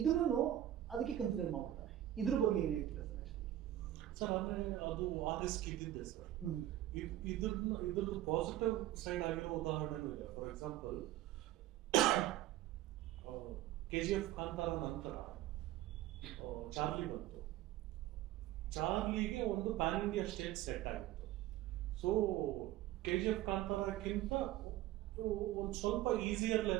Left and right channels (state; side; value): quieter; left; 13.6 dB